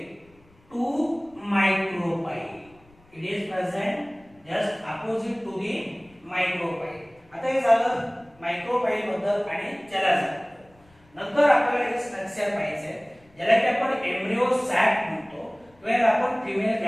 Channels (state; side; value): noise; left; rumble, 30 dB below the sound